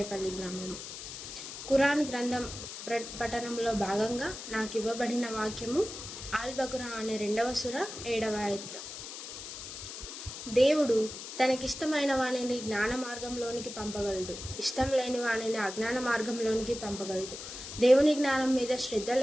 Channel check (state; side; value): noise; left; hiss, 10 dB below the sound